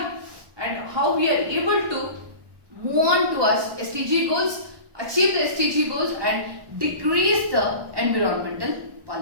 and how we are able to move on towards SDG goals, achieve the SDG goals and decrease the environmental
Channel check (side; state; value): left; late; 1.2 ms